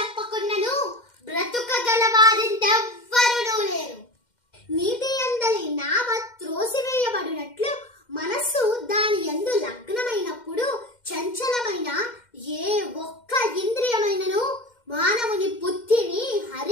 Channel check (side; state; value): right; late; 2.1 ms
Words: బ్రతుకగలవారింతెవ్వరునూ లేరు. నీటి యందలి నావ త్రోసివేయబడినట్లు మనస్సు దాని యందు లగ్నమైనప్పుడు చంచలమైన ఏ ఒక్క ఇంద్రియమైనను మానవుని బుద్ధిని